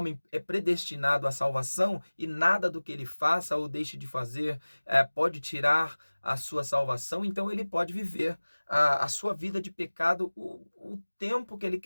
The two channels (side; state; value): both; inverted; correlation -1.00